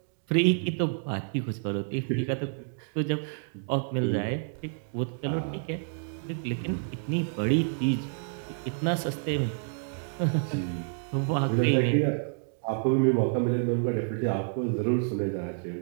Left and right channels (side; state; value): left; silent; digital silence